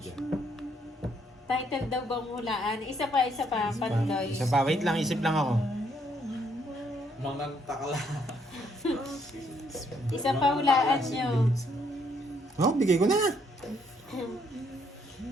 Title daw bang hulaan? Isa pa, Pandoy. Isa pa, wait lang, isip lang ako. Mga takla. Isa pa hulaan nyo. Oh, bigay ko na.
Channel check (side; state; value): both; normal; correlation 0.71